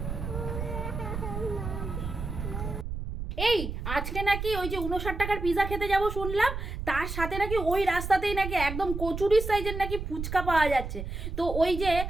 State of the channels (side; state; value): right; noise; rumble, 6 dB below the sound